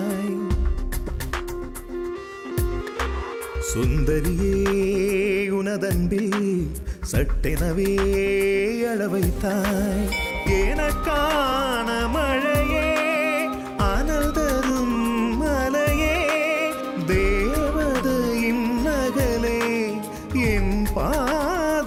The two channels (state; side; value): identical; both; correlation 1.00